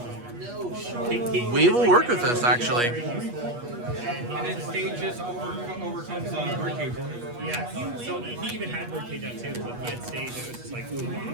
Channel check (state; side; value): late; left; 8.3 ms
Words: do anything. We will work with this actually. And then stage just overcomes birdcage. Yeah, so he even had birdcage out too, but he had stage, and it was just like, ooh.